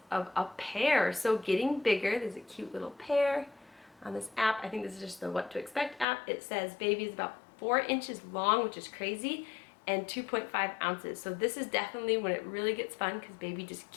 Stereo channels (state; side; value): drops out; right; at 6.1 s